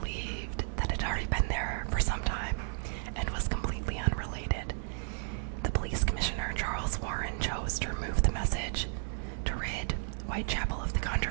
that it had already been there for some time and was completely unrelated. The police commissioner, Charles Warren, chose to remove the message to rid Whitechapel of the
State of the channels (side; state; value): left; silent; 56 dB below the other